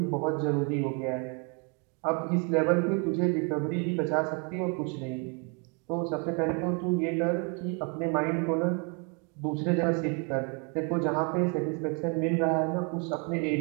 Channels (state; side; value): quieter; left; 35.4 dB